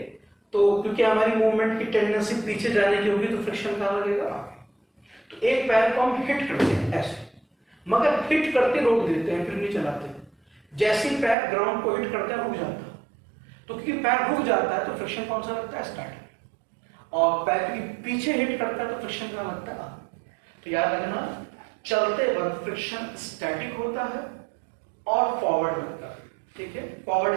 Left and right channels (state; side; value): drops out; left; at 11.4 s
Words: तो क्योंकि हमारी मूवमेंट की टेंडेंसी पीछे जाने की होगी तो फ्रिक्शन कहाँ लगेगा? तो एक पैर को हम हिट करते हैं ऐसे, मगर हिट करते रोक देते हैं, फिर नहीं चलाते। जैसे ही पैर ग्राउंड को हिट करता है रुक जाता है, तो क्योंकि पैर रुक जाता है तो फ्रिक्शन कौन सा लगता है? स्टैटिक। और पैर क्योंकि पीछे हिट करता है तो फ्रिक्शन कहाँ लगता है? तो याद रखना, चलते वक्त फ्रिक्शन स्टैटिक होता है और फॉरवर्ड लगता है, ठीक है।